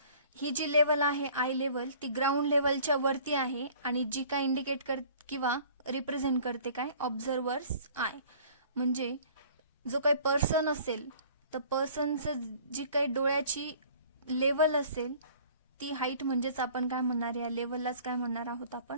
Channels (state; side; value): inverted; both; correlation -0.51